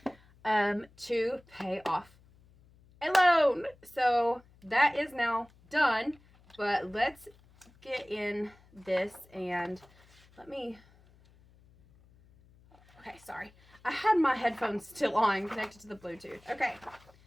to pay off a loan. So that is now done, but let's get in this and okay, sorry. I had my headphones still on, connected to the Bluetooth. Okay,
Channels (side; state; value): left; noise; hum, 28 dB below the sound